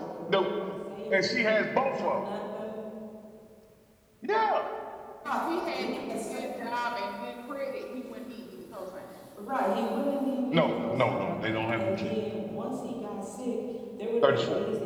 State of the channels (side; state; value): both; identical; correlation 1.00